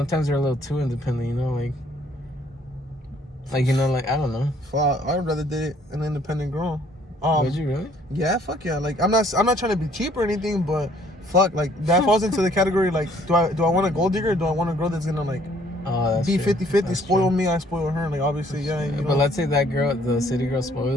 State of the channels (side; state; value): both; normal; correlation 0.61